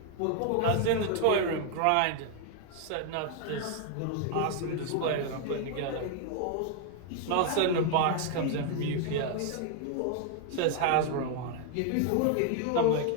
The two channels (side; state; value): both; different; correlation 0.00